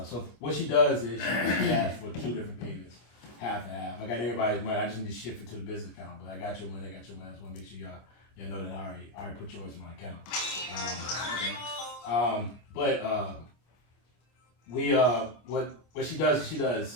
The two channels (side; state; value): right; late; 25 ms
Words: what she does is she asks for 2 different payments, half and half. I got everybody's money. I just need to shift it to the business account, but I got your money. I just want to make sure y'all know that I already put yours in my account. What she does is she